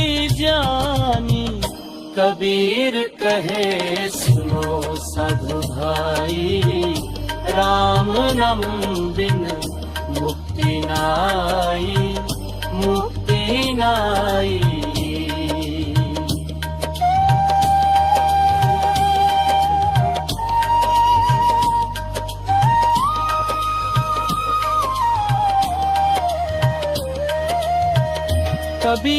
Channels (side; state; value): both; identical; correlation 1.00